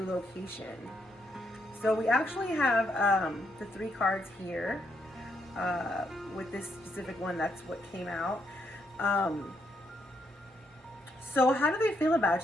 location. So we actually have the three cards here. With this specific one, that's what came out. So how do they feel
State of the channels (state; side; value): normal; both; correlation 0.76